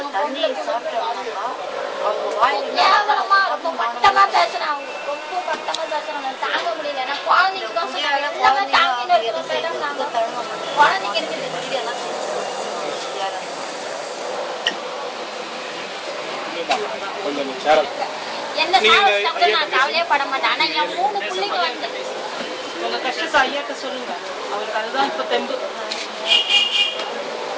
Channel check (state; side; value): identical; both; correlation 1.00